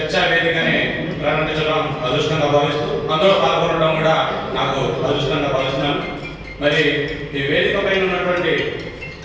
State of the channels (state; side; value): identical; both; correlation 1.00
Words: వేదికని ప్రారంభించడం అదృష్టంగా భావిస్తూ అందులో పాల్గొనడం కూడా నాకు అదృష్టంగా భావిస్తున్నాను. మరి ఈ వేదిక పైన ఉన్నటువంటి